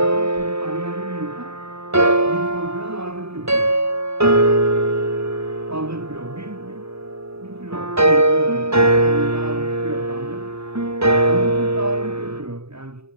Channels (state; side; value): late; left; 0.79 ms